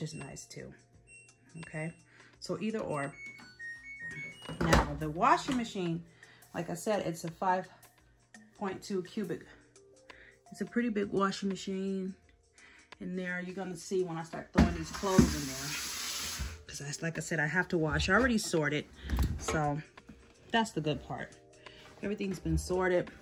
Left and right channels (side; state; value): both; identical; correlation 1.00